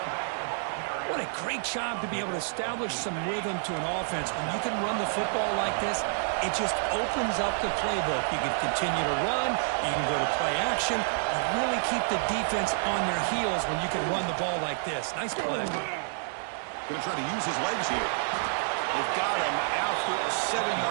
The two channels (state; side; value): silent; left; digital silence